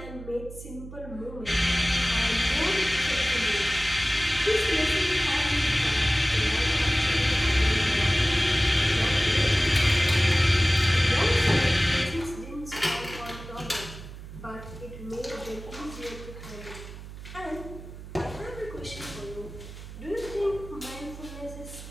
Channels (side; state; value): right; noise; hum, 13 dB below the sound